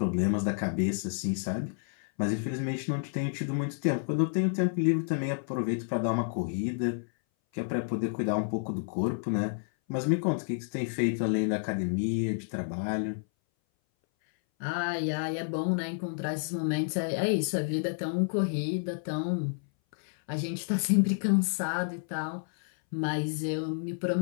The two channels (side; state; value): right; silent; 58 dB below the other